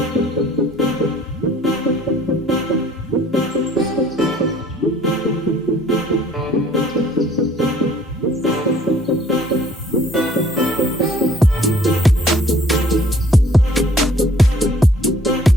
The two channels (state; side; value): normal; both; correlation 0.57